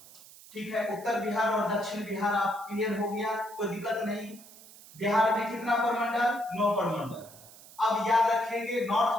ठीक है, उत्तर बिहार और दक्षिण बिहार आप क्लियर हो गया, कोई दिक्कत नहीं। बिहार में कितना प्रमंडल, 9 प्रमंडल। अब याद रखेंगे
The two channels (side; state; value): right; noise; hiss, 20 dB below the sound